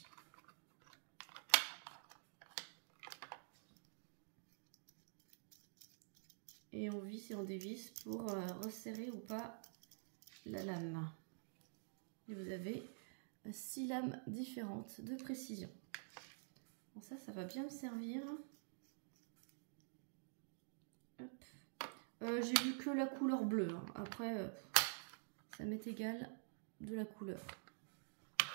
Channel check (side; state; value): left; silent; digital silence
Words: Et on visse et on dévisse pour resserrer ou pas la lame. Et vous avez 6 lames différentes de précision. Bon, ça va bien me servir. Hop. J'ai vu que la couleur bleue. Hein. Après, ça m'est égal de la couleur.